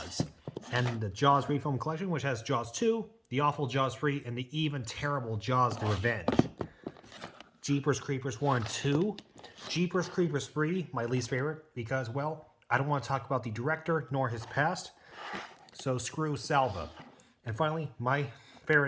And the Jaws Refilm Collection, which has Jaws 2, the awful Jaws 3, and the even terrible Jaws The Revenge. Jeepers Creepers 1 and 2. Jeepers Creepers 3, my least favorite, because, well, I don't want to talk about the director nor his past, so screw Salva. And finally, my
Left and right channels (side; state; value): both; identical; correlation 1.00